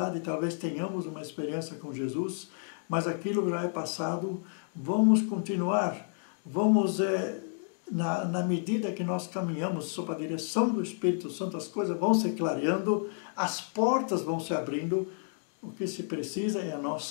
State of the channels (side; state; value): right; silent; 57 dB below the other